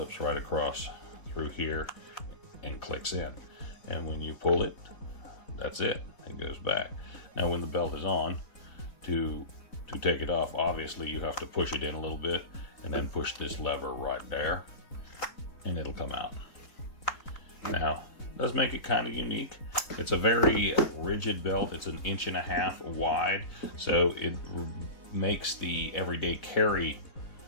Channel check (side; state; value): right; late; 4.0 ms